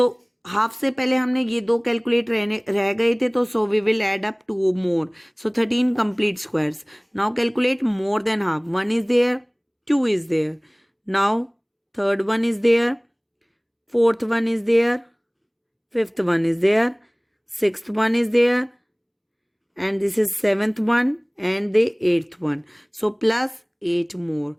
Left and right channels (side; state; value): both; identical; correlation 1.00